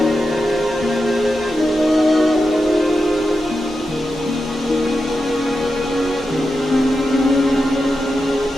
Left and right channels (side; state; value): both; normal; correlation 0.89